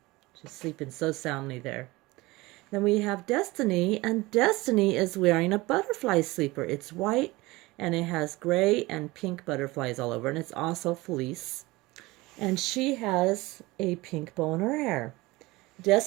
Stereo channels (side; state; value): left; quieter; 21.1 dB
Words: She's sleeping so soundly there. Then we have Destiny, and Destiny is wearing a butterfly sleeper. It's white, and it has gray and pink butterflies all over, and it's also fleece. And she has a pink bow in her hair.